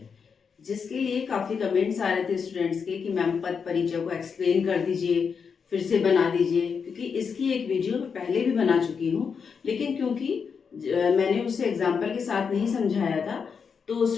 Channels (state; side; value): quieter; right; 6.1 dB